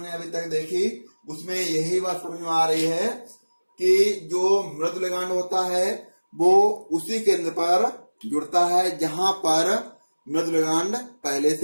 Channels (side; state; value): both; inverted; correlation -1.00